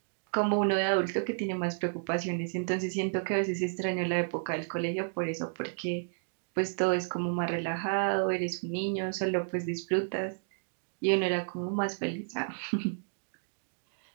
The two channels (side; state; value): left; silent; digital silence